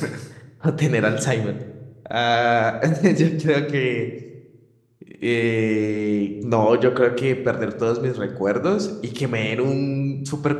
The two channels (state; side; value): identical; both; correlation 1.00